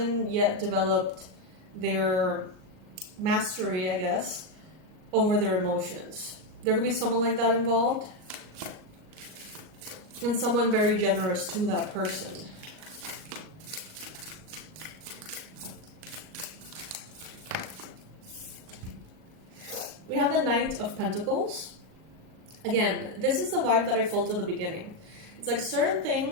yet developed their mastery, I guess, over their emotions. There could be someone like that involved, and someone very generous to that person. We have the Knight of Pentacles. Again, this is the vibe that I felt at the beginning. It's like certain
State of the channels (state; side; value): late; left; 38 ms